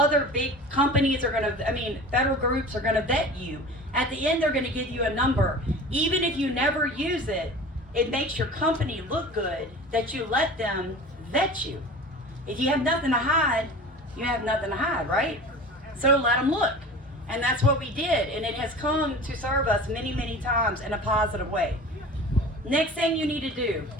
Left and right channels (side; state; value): both; normal; correlation 0.38